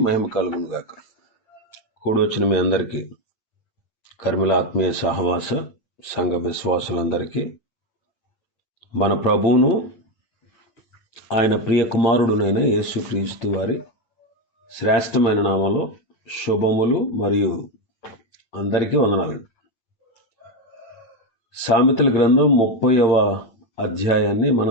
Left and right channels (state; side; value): late; right; 9.0 ms